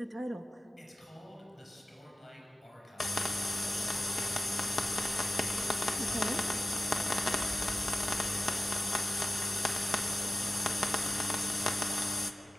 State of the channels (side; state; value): both; normal; correlation 0.96